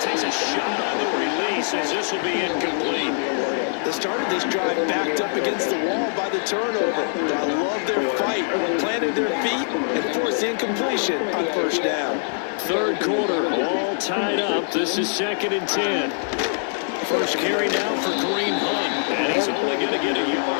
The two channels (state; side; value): silent; right; 63 dB below the other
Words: takes a shot on the release as this will be incomplete. They started this drive backed up against the wall by the turnover. But I love their fight, planted their feet, and forced incompletion on first down. Third quarter, all tied up. This is 2nd and 10. First carry now for Kareem Hunt, and he's only going to get a